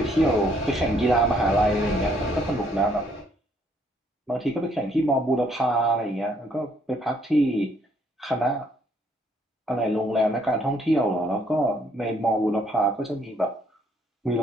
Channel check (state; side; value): normal; both; correlation 0.68